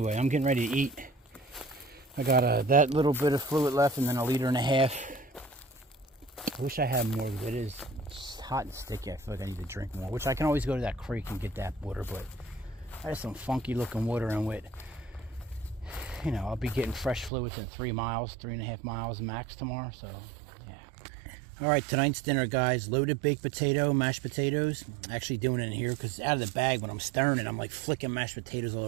I'm getting ready to eat. I got that little bit of fluid left and then 1.5 liters. I wish I had more, but it is hot and sticky. I feel like I need to drink more, which I can always go to that creek and get that water, but I have some funky looking water in with, I'll be getting fresh fluids in 3 miles, 3.5 miles max tomorrow, so yeah. All right, tonight's dinner, guys. Loaded baked potato, mashed potatoes. Actually doing it in here because out of the bag when I'm stirring it, I'm like flicking mashed potatoes all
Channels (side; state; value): left; drops out; at 17.3 s